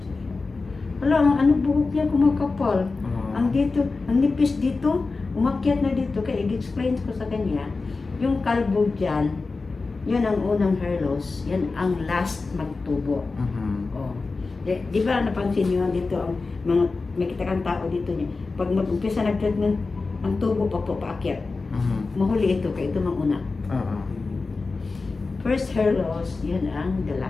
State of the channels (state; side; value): quieter; right; 3.9 dB